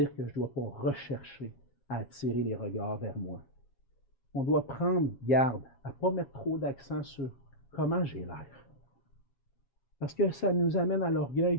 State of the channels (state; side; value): late; right; 7.4 ms